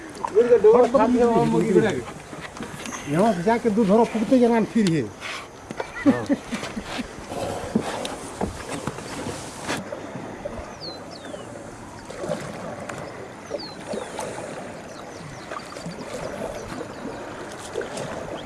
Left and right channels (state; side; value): identical; both; correlation 1.00